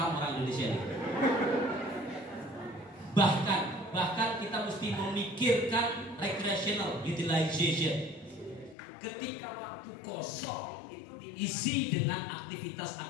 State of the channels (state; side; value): drops out; right; at 8.8 s